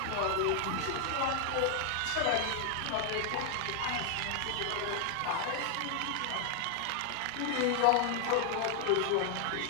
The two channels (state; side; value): different; both; correlation 0.00